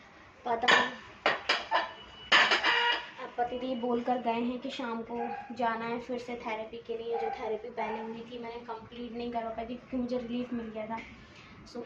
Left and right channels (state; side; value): identical; both; correlation 1.00